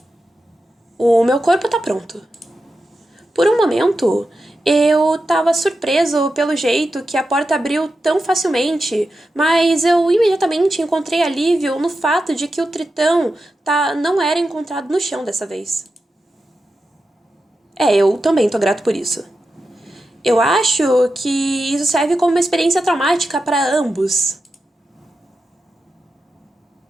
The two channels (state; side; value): normal; both; correlation 0.90